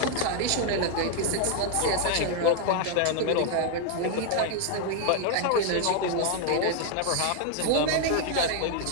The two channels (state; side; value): different; both; correlation 0.00